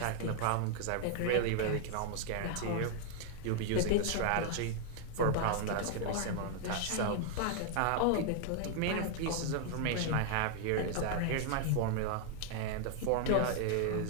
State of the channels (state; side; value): different; both; correlation 0.00